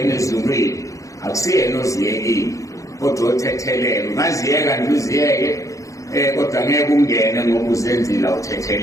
ezulwini, akusiyena oziyekile, kodwa othethelela. Ungaziyeka nje uziyeke, kodwa ngeke ungene ngoba uzenzile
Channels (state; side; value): late; right; 0.16 ms